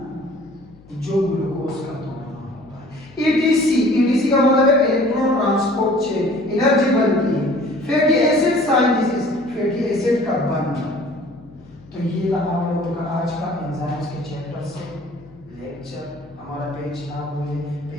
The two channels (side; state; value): left; noise; hum, 24 dB below the sound